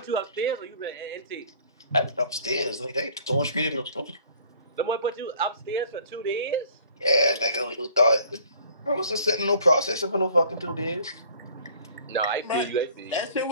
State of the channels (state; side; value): inverted; both; correlation -0.54